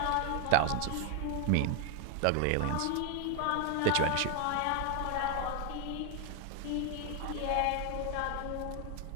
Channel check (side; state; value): both; different; correlation 0.01